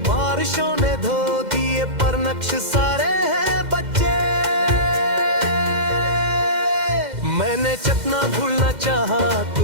बारिशों ने धो दिए पर नक्श सारे हैं बच्चे। मैंने जितना भूलना चाहा तू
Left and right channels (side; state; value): left; late; 2.1 ms